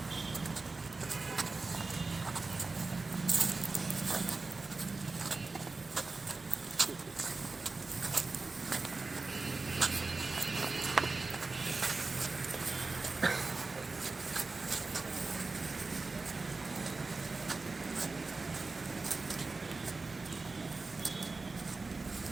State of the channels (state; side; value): quieter; left; 3.8 dB